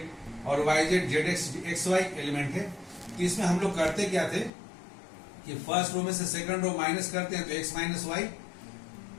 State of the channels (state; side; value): drops out; right; at 4.5 s